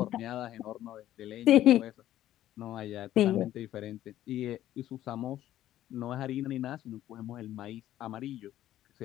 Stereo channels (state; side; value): quieter; right; 13.0 dB